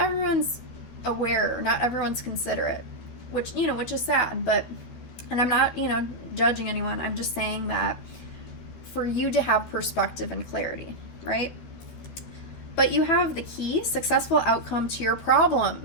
aware, not everyone's considerate, which is sad. But, and I'm not, judging anyone. I'm just saying that for you to have perspective and clarity, right? But you have the key, successful outcome to your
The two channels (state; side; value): late; right; 13 ms